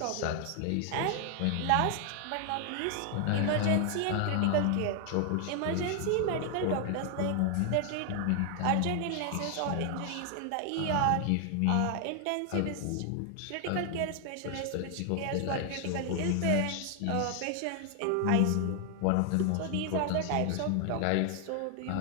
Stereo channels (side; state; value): both; different; correlation 0.00